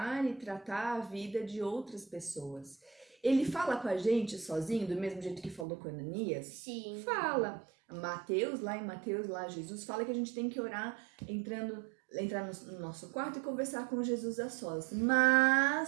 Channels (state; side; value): drops out; left; at 5.7 s